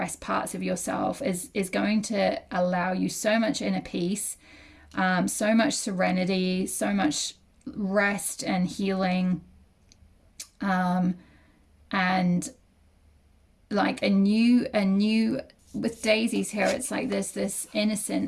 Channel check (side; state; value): both; identical; correlation 1.00